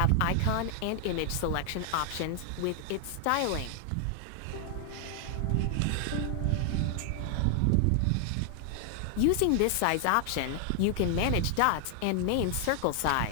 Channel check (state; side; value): different; both; correlation 0.00